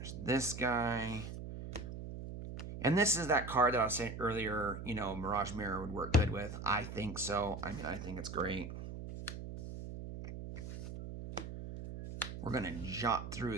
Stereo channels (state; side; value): noise; right; hum, 8 dB below the sound